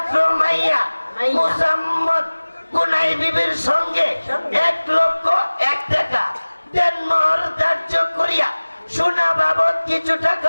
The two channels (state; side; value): inverted; both; correlation -1.00